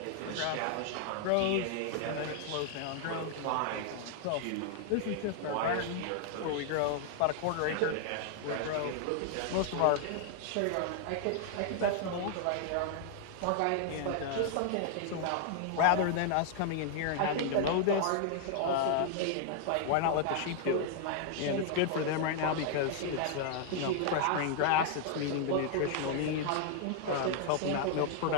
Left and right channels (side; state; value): both; different; correlation 0.00